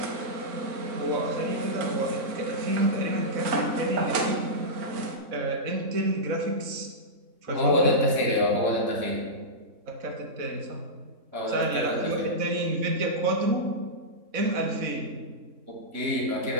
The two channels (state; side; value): late; left; 3.6 ms